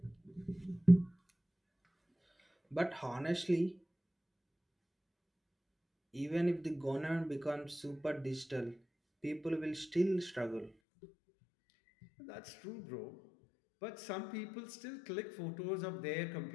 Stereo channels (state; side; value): drops out; right; at 10.7 s